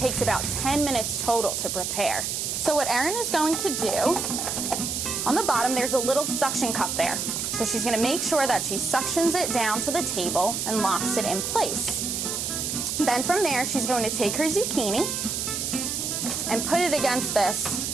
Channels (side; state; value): right; noise; hiss, 2 dB below the sound